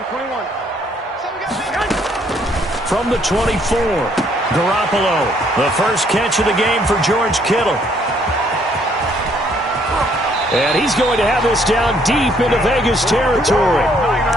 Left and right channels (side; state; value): both; normal; correlation 0.67